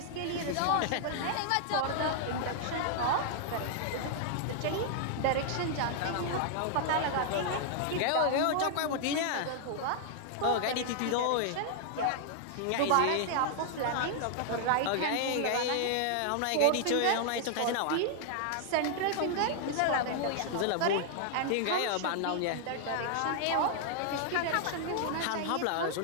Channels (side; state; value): both; different; correlation 0.00